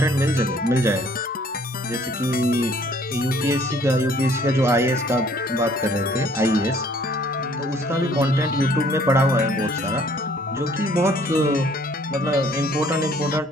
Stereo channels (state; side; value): normal; both; correlation 0.59